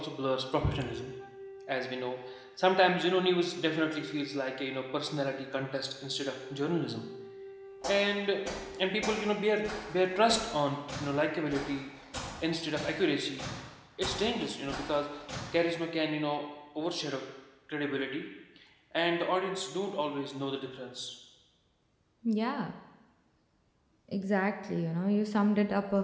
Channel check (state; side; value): identical; both; correlation 1.00